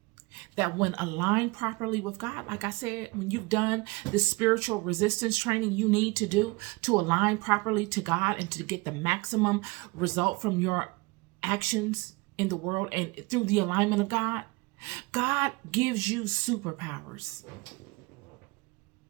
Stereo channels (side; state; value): left; quieter; 25.1 dB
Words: that when aligned properly with God, like I said, when you've done the spiritual resistance training you need to do to align properly to God and to get the maximum result from your actions in the world and through the alignment of God, God gives you superpowers.